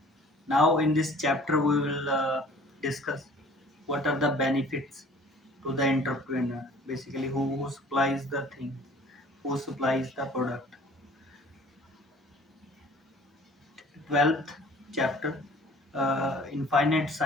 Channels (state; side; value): normal; both; correlation 0.51